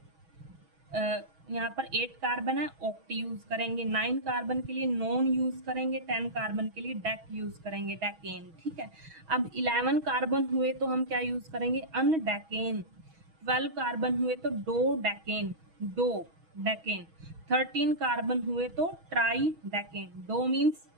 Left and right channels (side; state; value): left; late; 6.2 ms